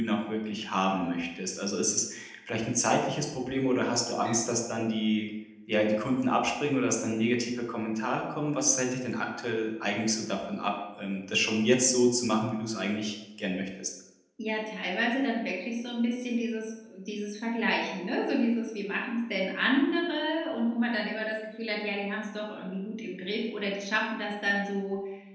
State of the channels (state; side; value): identical; both; correlation 1.00